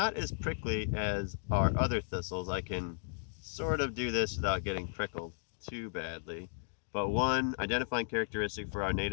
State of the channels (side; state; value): right; silent; digital silence